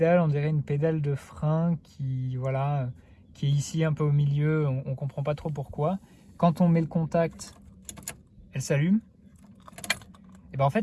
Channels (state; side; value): identical; both; correlation 1.00